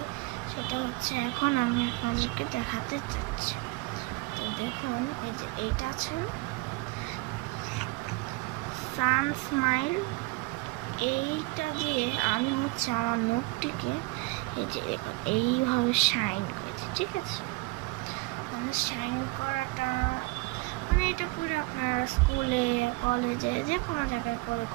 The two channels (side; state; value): left; quieter; 25.3 dB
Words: সেটা হচ্ছে এখন আমি আপনাদেরকে দেখাতে চাচ্ছি। তো দেখুন, এই যে এইটা আছে সান স্মাইল, এইটা দিয়ে আমি হচ্ছে আমার নখটিকে এই যে দেখুন এইভাবে শাইন করেছি। ঠিক আছে, মানে শাইন করাটা মানে এটা করে আপনারা স্কুলে কলেজে যে কোনো জায়গায় করে